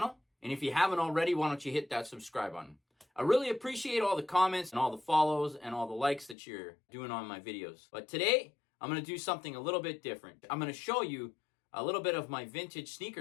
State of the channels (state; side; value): drops out; right; at 6.4 s